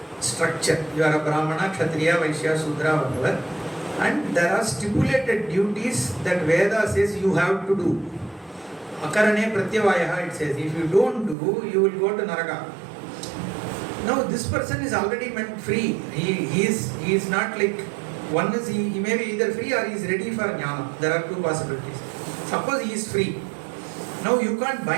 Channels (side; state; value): left; drops out; at 11.4 s